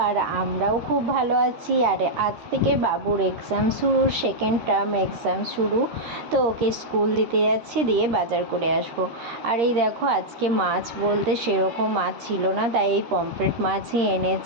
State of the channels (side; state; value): left; late; 13 ms